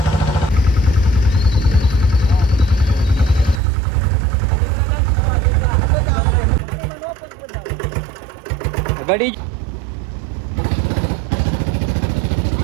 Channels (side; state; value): left; drops out; at 3.6 s